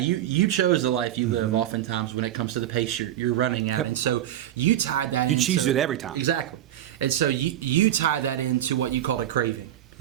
chose the life you live. Oftentimes when it comes to the pace you're running at, and so you tied that. You choose it every time. Exactly, and so you tie that into what you call a craving.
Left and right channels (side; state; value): left; quieter; 12.1 dB